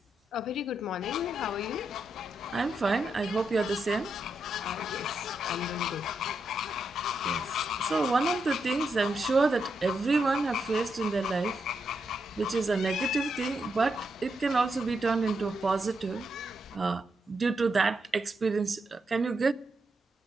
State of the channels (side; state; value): both; normal; correlation 0.83